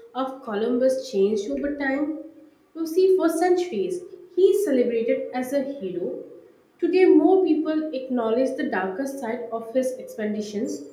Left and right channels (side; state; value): both; identical; correlation 1.00